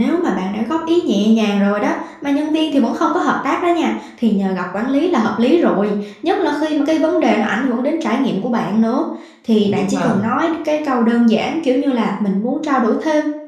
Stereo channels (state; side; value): identical; both; correlation 1.00